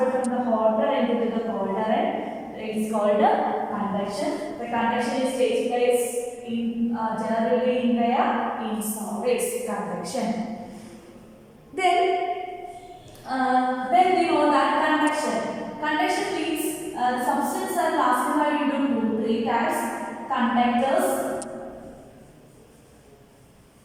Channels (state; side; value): identical; both; correlation 1.00